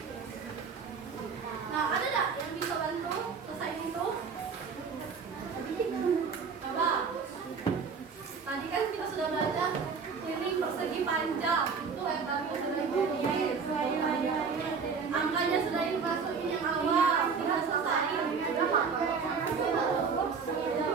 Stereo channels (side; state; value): left; quieter; 5.5 dB